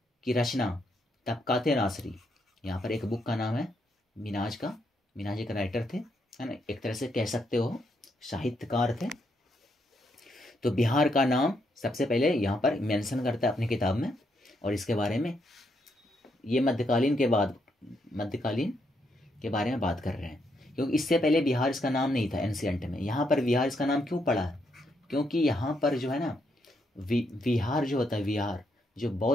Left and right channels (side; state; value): both; normal; correlation 0.77